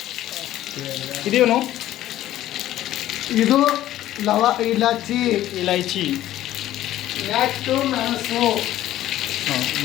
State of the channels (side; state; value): right; quieter; 13.7 dB